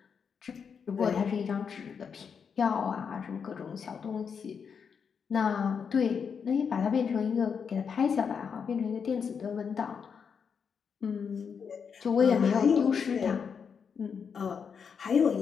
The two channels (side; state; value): right; quieter; 6.5 dB